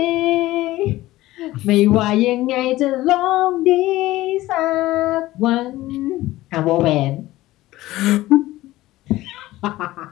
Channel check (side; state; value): right; quieter; 16.9 dB